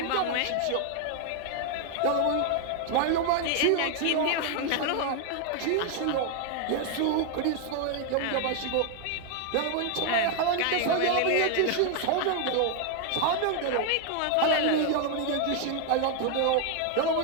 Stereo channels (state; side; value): different; both; correlation 0.00